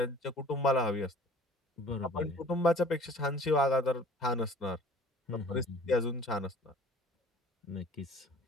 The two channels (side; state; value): both; normal; correlation 0.49